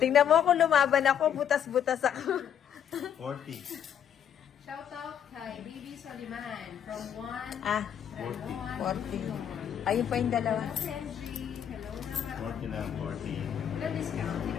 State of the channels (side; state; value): right; quieter; 9.1 dB